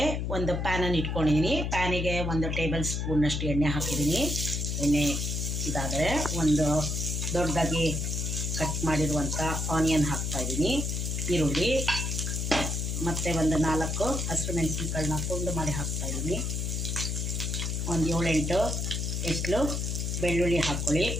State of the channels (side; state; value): left; noise; hum, 1 dB below the sound